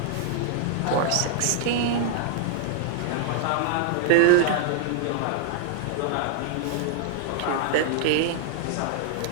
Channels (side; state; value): both; different; correlation 0.00